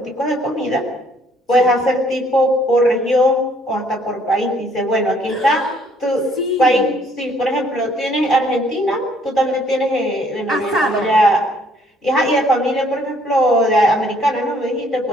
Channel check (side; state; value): both; normal; correlation 0.63